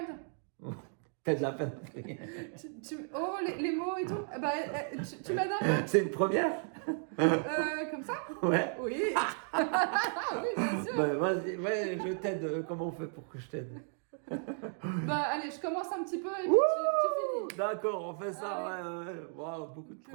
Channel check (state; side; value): silent; left; 55 dB below the other